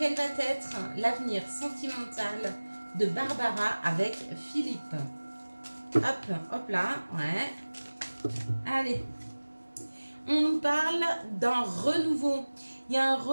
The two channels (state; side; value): inverted; both; correlation -1.00